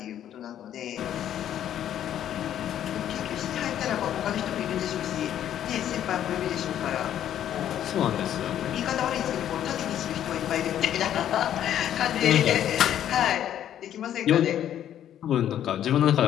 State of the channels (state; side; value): quieter; right; 10.8 dB